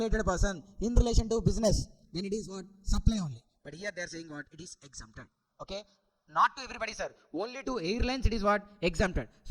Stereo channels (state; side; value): identical; both; correlation 1.00